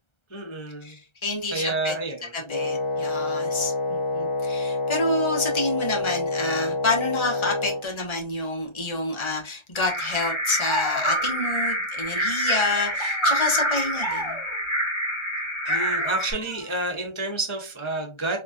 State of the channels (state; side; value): late; right; 1.3 ms